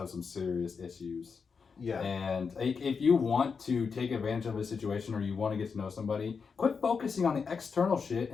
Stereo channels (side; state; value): right; quieter; 5.6 dB